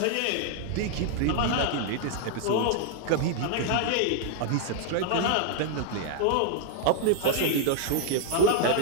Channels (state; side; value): different; both; correlation 0.00